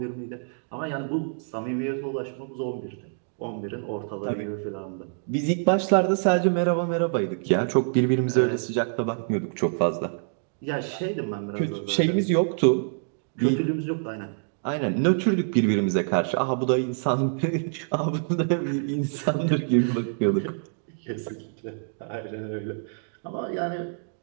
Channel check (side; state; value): left; silent; digital silence